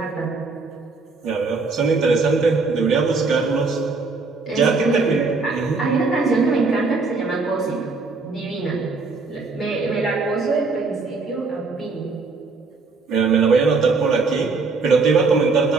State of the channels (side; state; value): left; quieter; 4.1 dB